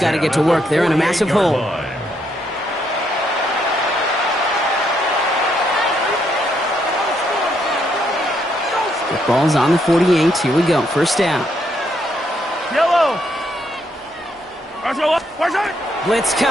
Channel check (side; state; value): both; normal; correlation 0.75